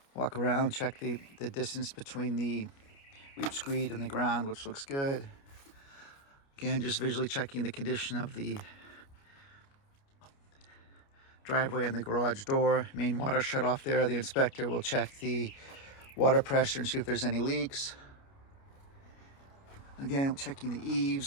Walk around, check the distance between the weep screed and the ground, which looks good. Again, just visually checking the condition of the driveway and the garage door. Main water shut off there. The inspector will check the water pressure and see if there's any leaks. Again, checking the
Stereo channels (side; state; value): right; late; 29 ms